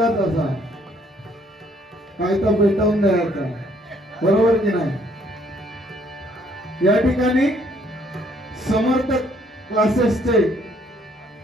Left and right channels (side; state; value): both; normal; correlation 0.65